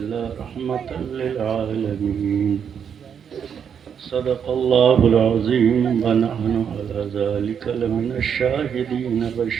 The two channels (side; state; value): left; quieter; 7.6 dB